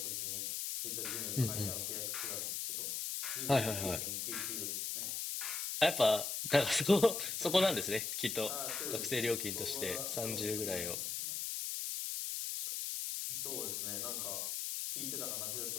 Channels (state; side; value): noise; left; hiss, 2 dB below the sound